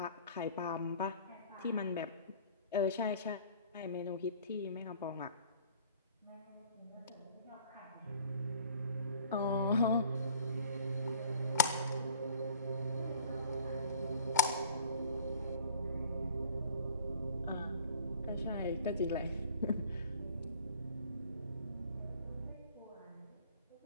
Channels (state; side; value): inverted; both; correlation -0.50